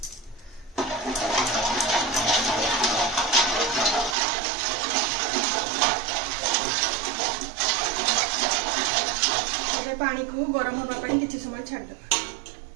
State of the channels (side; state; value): left; drops out; at 4.2 s